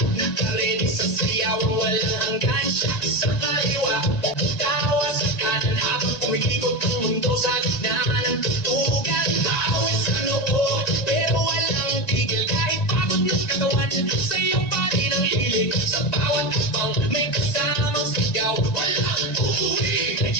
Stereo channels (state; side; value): late; right; 1.5 ms